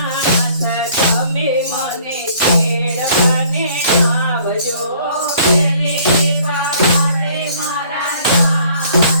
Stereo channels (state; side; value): inverted; both; correlation -0.57